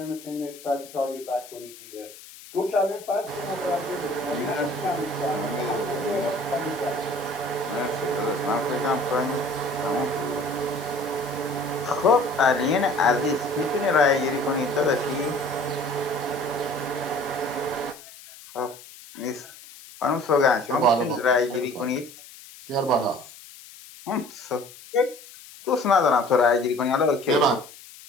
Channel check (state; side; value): noise; left; hiss, 18 dB below the sound